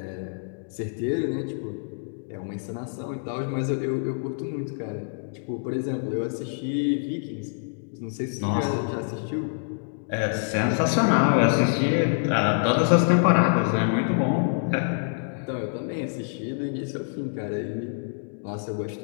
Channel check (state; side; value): silent; right; digital silence